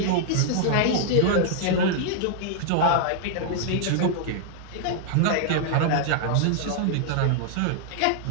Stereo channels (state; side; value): different; both; correlation -0.01